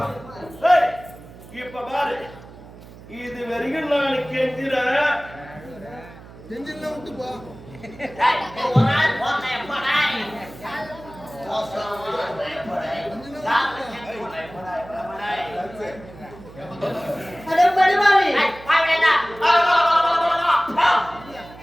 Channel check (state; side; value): noise; right; hum, 18 dB below the sound